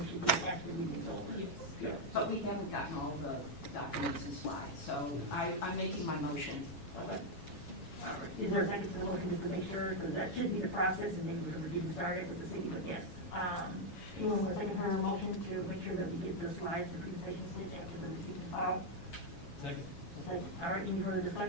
should be after the meeting is over. Yes. But we haven't gotten all the documents and slides, so I'm making my motion. Okay. All right. Is there a second to the motion, just to make sure, because that should be the process, and then we're going to get started with the city, but yes. Anyone want to second her motion to make sure that we get the slides and presentations sent after the receipt and file? Second. Okay. All right, any further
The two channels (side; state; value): right; late; 7.3 ms